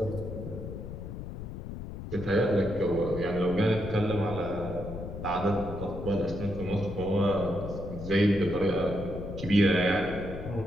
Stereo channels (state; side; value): noise; left; rumble, 9 dB below the sound